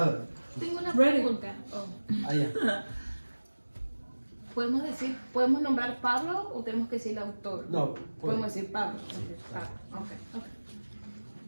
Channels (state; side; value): inverted; both; correlation -1.00